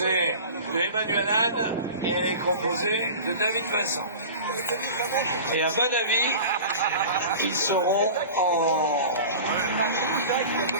de Emmanuel Anne et elle est composée de David Vincent. Et à mon avis, ils seront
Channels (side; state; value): both; inverted; correlation -0.36